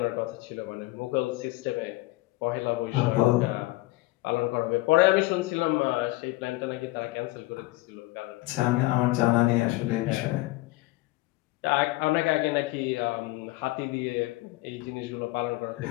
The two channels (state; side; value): quieter; right; 20.5 dB